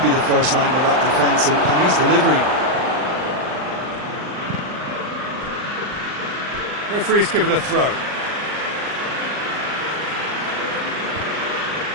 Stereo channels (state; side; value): late; left; 39 ms